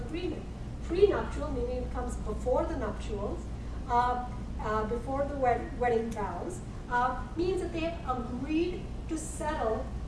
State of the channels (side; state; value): both; identical; correlation 1.00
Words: Prenuptial, meaning it comes before the nuptials, before the wedding vows, means that they agreed to settle